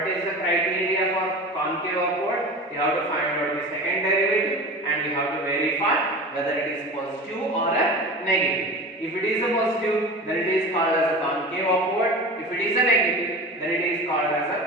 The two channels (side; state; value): both; normal; correlation 0.32